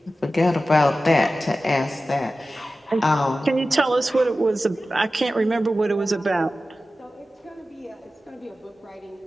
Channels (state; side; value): normal; both; correlation 0.94